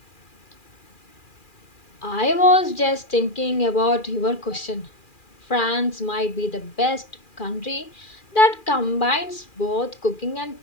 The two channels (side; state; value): right; late; 2.4 ms